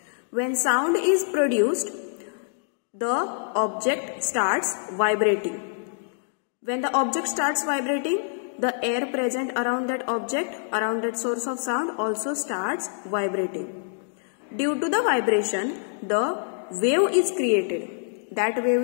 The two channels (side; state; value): right; silent; digital silence